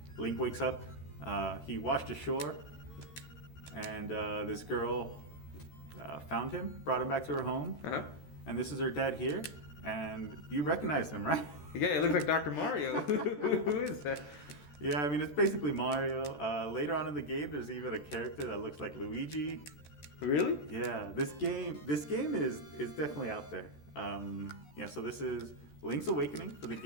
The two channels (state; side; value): late; right; 13 ms